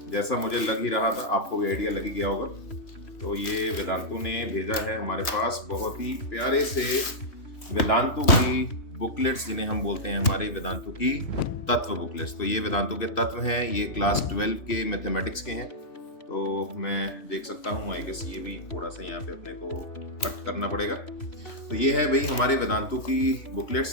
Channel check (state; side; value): late; right; 3.0 ms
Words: जैसा मुझे लग ही रहा था, आपको भी आइडिया लग ही गया होगा। तो ये वेदांतु ने भेजा है हमारे पास बहुत ही प्यारे से वेदांतु की बुकलेट्स, जिन्हें हम बोलते हैं हमारे वेदांतु की तत्व बुकलेट्स। तो ये वेदांतु के तत्व हैं, ये क्लास 12 के मैथमेटिक्स के हैं। तो मैं देख सकता हूँ, आई गेस ये भी थोड़ा सा यहाँ पे अपने को कट करना पड़ेगा। तो ये है भाई हमारे वेदांतु की